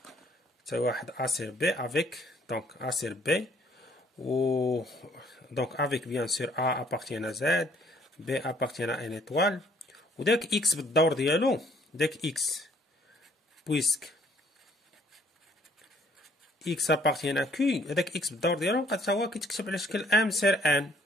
تساوي واحد ا سير بي افيك دونك ا سير بي و دونك افيك بيان سور ا ابارتيان ا زد بي ابارتيان ا ان ايطوال، وداك اكس بالدور ديالو داك اكس بويسك اكس ابارتيان ا كي، هذاك اكس بالدور ديالو بقى حتى هو كيتكتب على شكل ام سير ان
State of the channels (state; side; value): normal; both; correlation 0.62